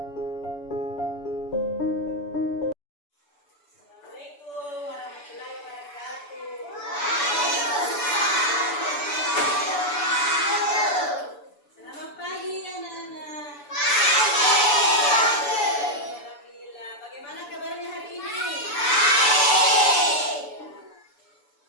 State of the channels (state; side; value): late; right; 6.9 ms